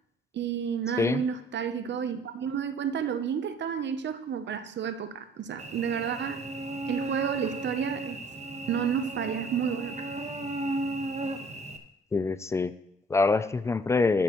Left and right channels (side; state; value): both; normal; correlation 0.55